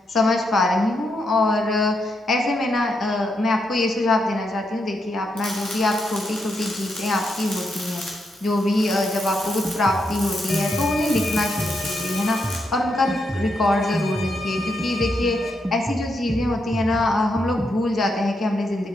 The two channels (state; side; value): normal; both; correlation 0.81